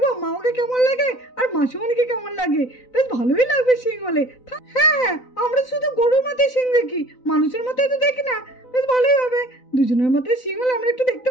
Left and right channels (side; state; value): right; late; 4.0 ms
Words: মামাকে কেমন লাগে আর মাসিমণিকে কেমন লাগে, বেশ ভালোই লাগবে শিং হলে। হ্যাঁ, আমরা শুধু গরুর মাথায় শিং দেখি, মানুষের মাথায় তো দেখি না। বেশ ভালোই হবে, দুজনের মাথায় শিং হলে আমরা একটু দেখতে